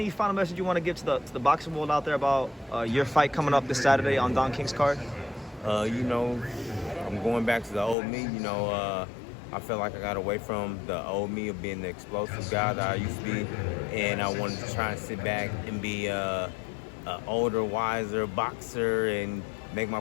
final message you want to give to the boxing world out there about your fight coming up this Saturday on Don King's card? You know, I'm going back to the old me. You know, I feel like I got away from the old me of being the explosive guy that I used to be, and I wanted to try and sit back and be an older, wiser boxer and make my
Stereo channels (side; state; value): right; drops out; at 8.0 s